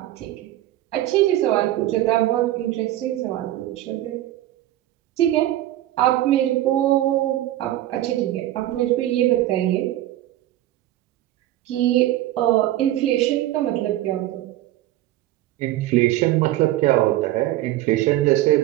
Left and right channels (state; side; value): quieter; left; 14.6 dB